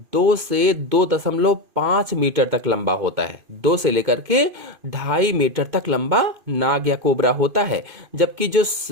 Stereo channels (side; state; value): left; late; 2.5 ms